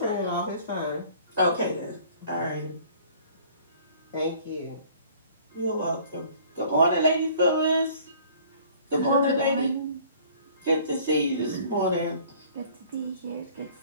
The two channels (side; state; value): both; inverted; correlation -0.53